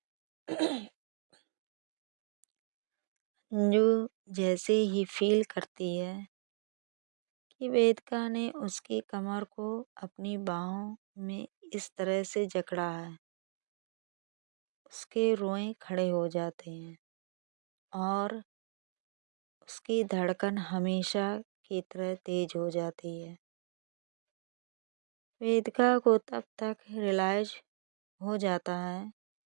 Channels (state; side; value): silent; left; digital silence